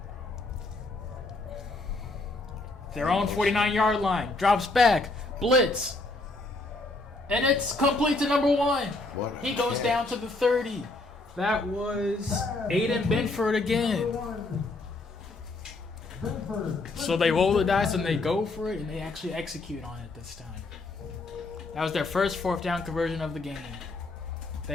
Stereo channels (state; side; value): quieter; right; 3.1 dB